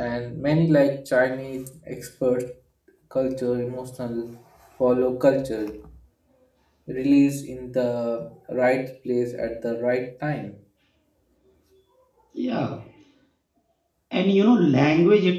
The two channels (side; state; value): both; identical; correlation 1.00